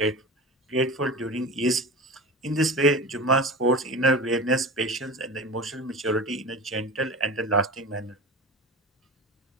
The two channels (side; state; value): both; normal; correlation 0.31